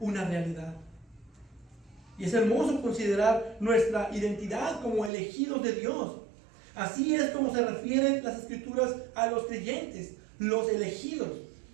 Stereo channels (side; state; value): left; drops out; at 5.1 s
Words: una realidad. Y es hermoso considerar nuestra identidad como elegidos de Dios. Así es como se refieren las Escrituras a los creyentes, los elegidos.